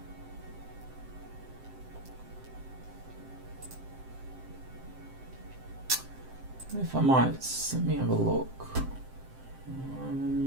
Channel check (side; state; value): left; late; 7.6 ms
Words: If I might, let me have a look.